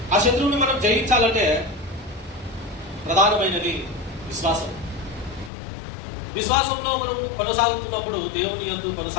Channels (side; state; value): right; drops out; at 5.5 s